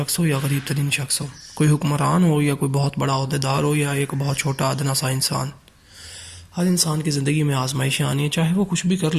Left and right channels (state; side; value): identical; both; correlation 1.00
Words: ہو یا غریب ترین شخص ہو، کوئی حکمران ہو یا کوئی بہت بڑا عہدیدار ہو یا ایک بہت چھوٹا ادنا سا انسان۔ ہر انسان کی زندگی میں آزمائشیں آنی ہیں، چاہے وہ کچھ بھی کر